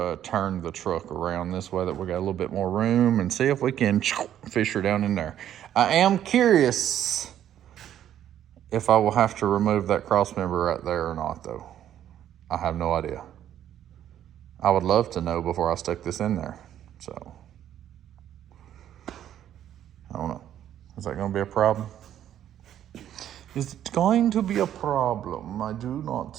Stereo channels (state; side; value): quieter; left; 10.9 dB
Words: turn the truck around this way that we got a little bit more room and see if we can fish her down in there. I am curious if I will have to remove that cross member right there or not, though. I have no idea. I would love to know before I stick this in there. So, I don't know. Is that going to be a problem? Is it going to be a problem? I do